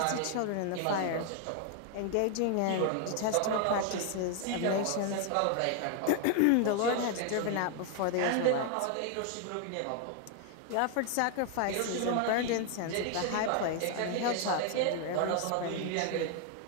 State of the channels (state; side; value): different; both; correlation 0.00